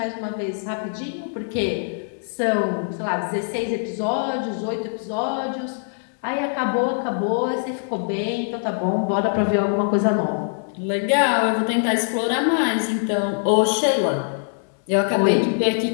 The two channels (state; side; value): silent; right; 64 dB below the other